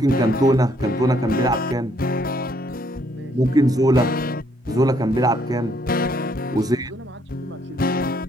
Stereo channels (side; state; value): both; normal; correlation 0.69